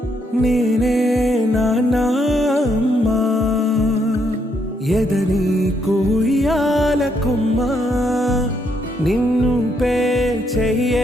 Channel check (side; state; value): both; normal; correlation 0.75